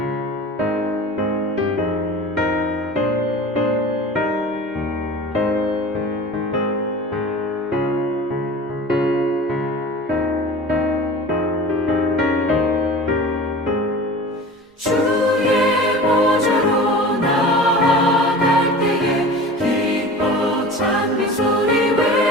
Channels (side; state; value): both; normal; correlation 0.37